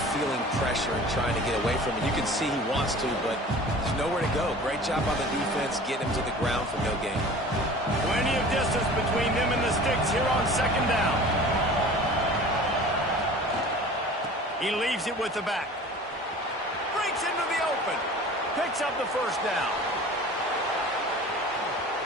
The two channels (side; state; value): both; normal; correlation 0.42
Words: feeling pressure and trying to get away from it. You can see he wants to, but there's nowhere to go. Great job on the defense, getting him to the ground for no gain. Plenty of distance between them and the sticks here on second down. He leaves it with the back. Breaks into the open. Picks up the first down.